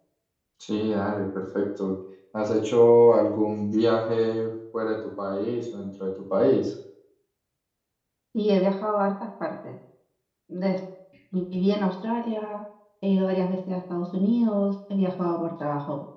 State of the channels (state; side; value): identical; both; correlation 1.00